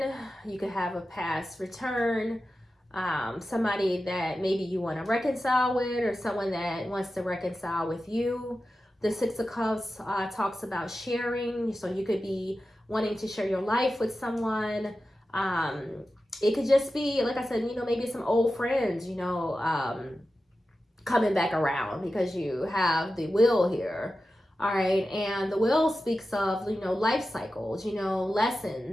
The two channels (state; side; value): normal; both; correlation 0.93